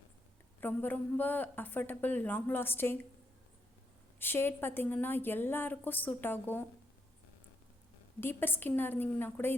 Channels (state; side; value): normal; both; correlation 0.79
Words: ரொம்ப ரொம்ப அஃபர்டபுள், லாங் லாஸ்டிங் ஷேட். பார்த்திங்கன்னா எல்லாருக்கும் சூட் ஆகும். டீப்பர் ஸ்கின்னாக இருந்தீங்கன்னா கூட